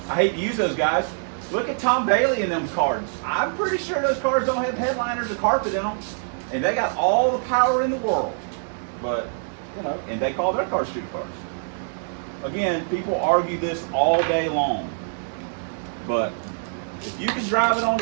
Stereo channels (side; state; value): left; silent; digital silence